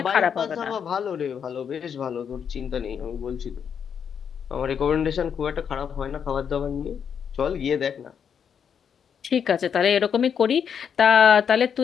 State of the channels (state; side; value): quieter; right; 7.5 dB